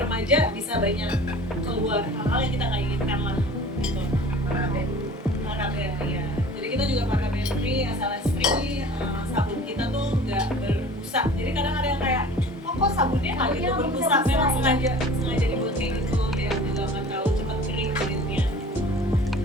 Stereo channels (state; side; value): normal; both; correlation 0.44